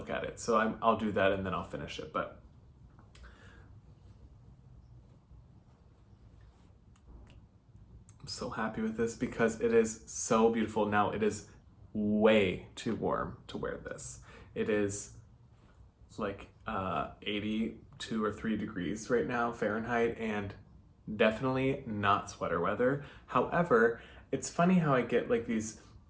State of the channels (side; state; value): both; identical; correlation 1.00